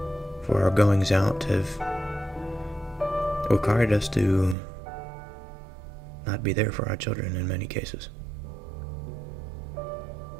For our goings out have required us to not be there for our children in many cases.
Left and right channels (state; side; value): drops out; left; at 4.5 s